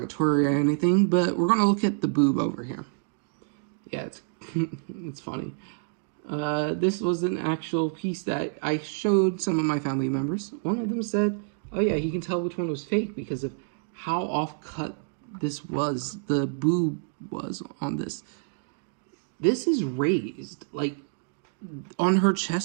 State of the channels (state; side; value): silent; left; digital silence